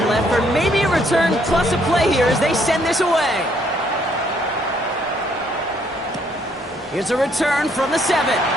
left for maybe a return plus a play here as they send this away. Here's a return from the 7.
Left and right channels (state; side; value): normal; both; correlation 0.68